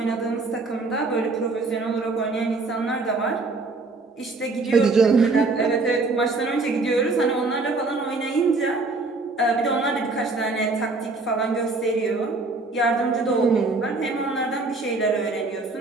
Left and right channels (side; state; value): left; quieter; 3.6 dB